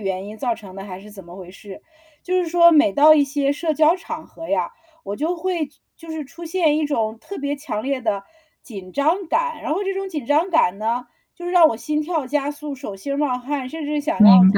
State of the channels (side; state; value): both; identical; correlation 1.00